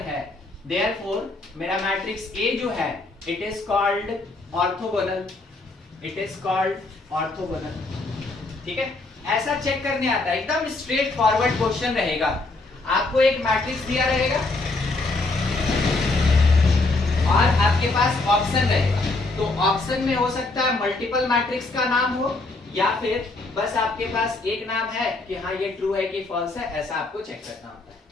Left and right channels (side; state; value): right; quieter; 3.2 dB